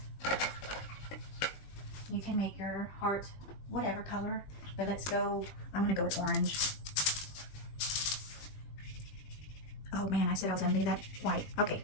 You can make your heart whatever color, but let's go, I'm gonna go with orange. Oh man, I said I was gonna leave that white. Okay,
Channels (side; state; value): right; late; 20 ms